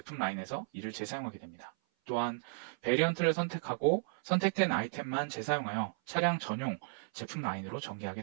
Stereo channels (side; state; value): left; silent; 55 dB below the other